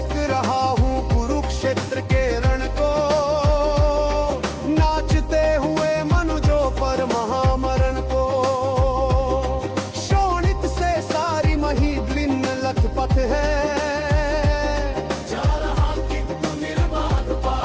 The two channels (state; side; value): identical; both; correlation 1.00